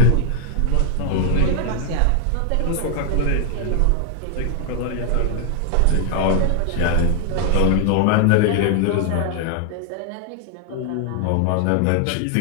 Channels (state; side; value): different; both; correlation 0.00